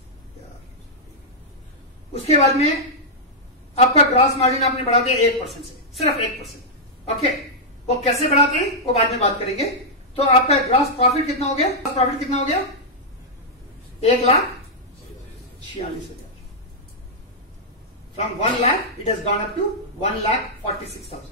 में आपका ग्रॉस मार्जिन आपने बढ़ा दिया 1% से, सिर्फ 1%। ओके, वो कैसे बढ़ाते हैं वो बाद में बात करेंगे। तो आपका ग्रॉस प्रॉफिट कितना हो गया? ग्रॉस प्रॉफिट कितना हो गया? 1,46,000। From 1 lakh it has gone up to 1,46,000।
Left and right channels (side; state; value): both; normal; correlation -0.07